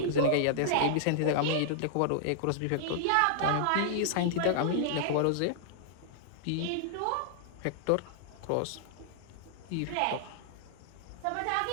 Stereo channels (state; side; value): different; both; correlation -0.01